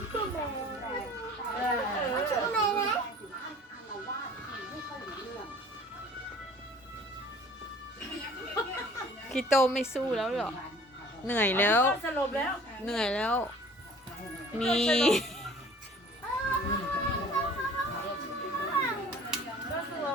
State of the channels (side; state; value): both; normal; correlation 0.49